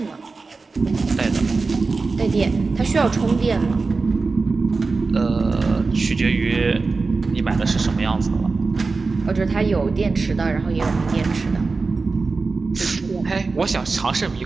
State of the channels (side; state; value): left; quieter; 4.1 dB